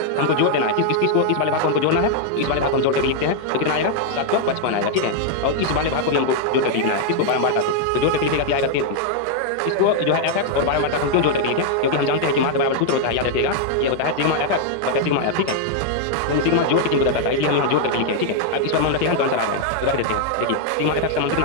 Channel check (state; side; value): different; both; correlation 0.00